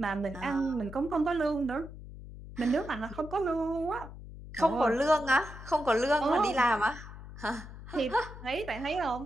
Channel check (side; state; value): left; noise; hum, 13 dB below the sound